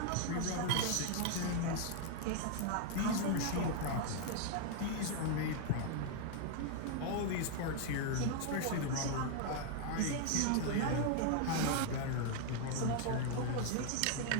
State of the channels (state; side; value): different; both; correlation 0.00